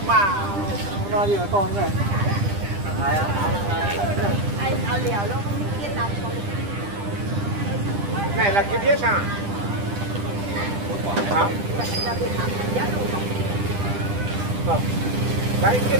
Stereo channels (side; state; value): left; late; 10 ms